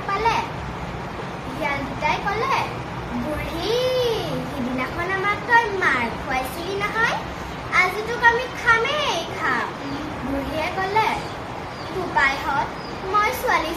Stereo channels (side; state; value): both; identical; correlation 1.00